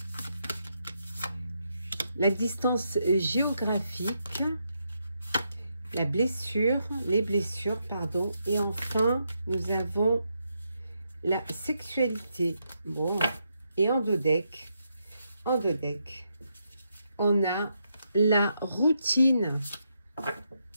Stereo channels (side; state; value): both; inverted; correlation -0.81